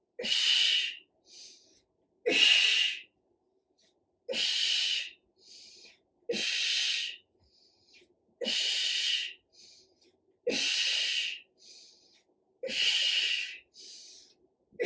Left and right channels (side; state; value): both; identical; correlation 1.00